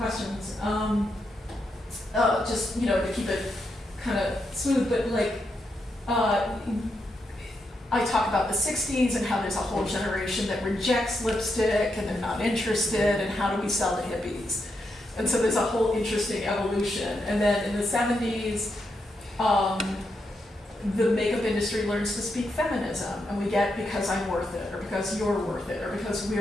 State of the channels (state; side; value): normal; both; correlation 0.83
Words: Just, to keep it kind of smooth, but I talk about the 60s and how there's a whole generation that rejects lipstick and they're not interested, and how do we sell to hippies? And so there's a whole interesting evolution. And then in the 70s, the makeup industry learns to speak feminism, and we get because I'm worth it, or because you're worth it, or because